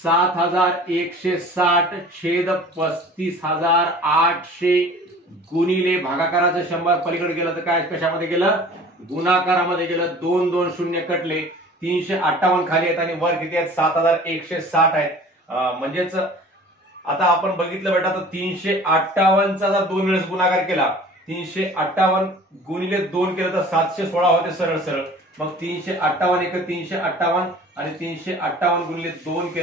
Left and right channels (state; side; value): normal; both; correlation 0.45